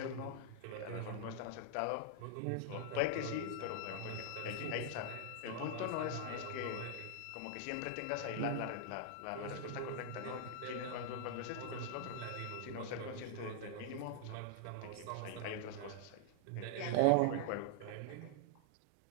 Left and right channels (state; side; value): different; both; correlation -0.01